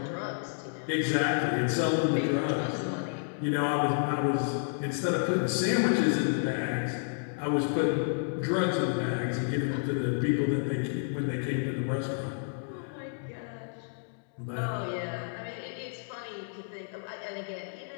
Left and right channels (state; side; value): silent; right; digital silence